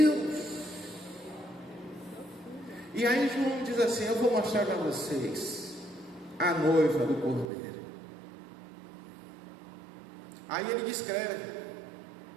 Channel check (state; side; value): drops out; left; at 7.5 s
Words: E aí João diz assim: eu vou mostrar para vocês a noiva do Cordeiro. Aí ele descreve.